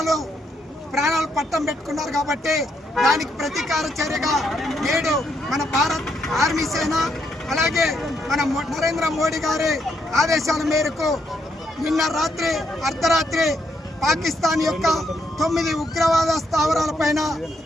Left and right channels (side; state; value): both; normal; correlation 0.76